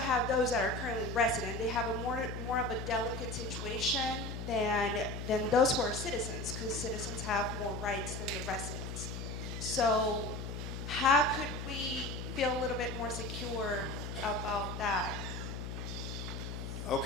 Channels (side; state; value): left; noise; hum, 6 dB below the sound